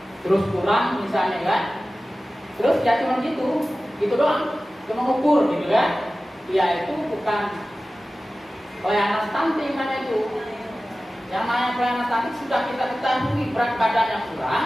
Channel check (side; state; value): both; normal; correlation 0.96